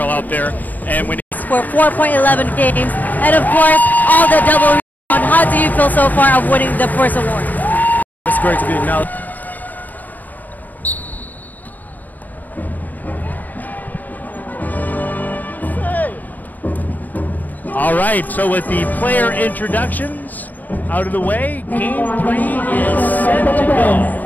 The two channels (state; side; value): late; right; 0.085 ms